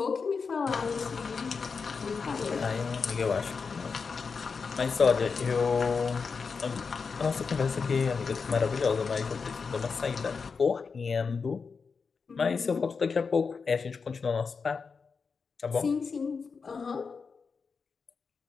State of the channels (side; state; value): right; quieter; 5.2 dB